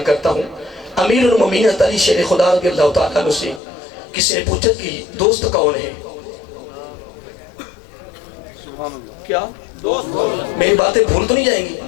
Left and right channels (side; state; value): right; drops out; at 3.6 s